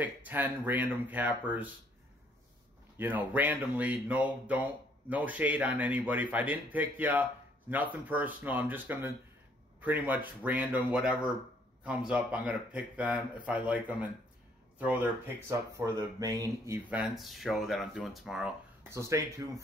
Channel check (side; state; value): both; normal; correlation 0.65